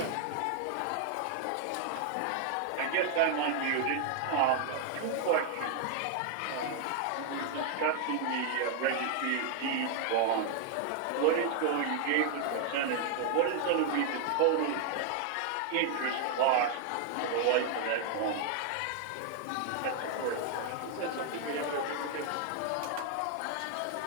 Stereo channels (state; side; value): different; both; correlation 0.00